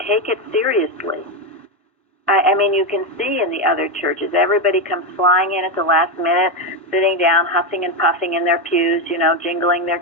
it seriously. I mean, you can see in the other churches, everybody comes flying in at the last minute, sitting down, huffing and puffing in their pews, jingling their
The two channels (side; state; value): both; normal; correlation 0.09